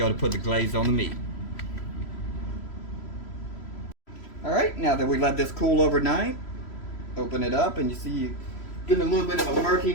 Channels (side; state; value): right; late; 3.1 ms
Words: put the glaze on the meat. Alright, now that we let this cool overnight, open it up and you see getting a little bit of a